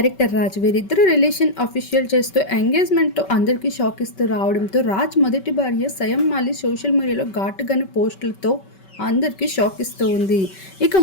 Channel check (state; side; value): late; right; 5.2 ms